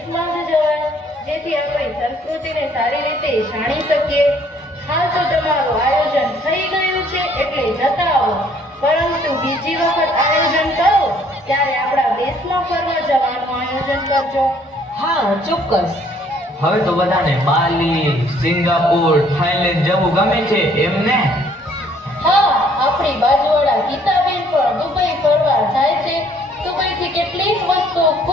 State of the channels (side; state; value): both; normal; correlation 0.62